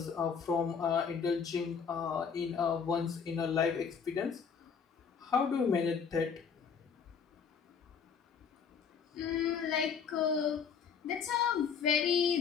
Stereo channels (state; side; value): quieter; right; 6.5 dB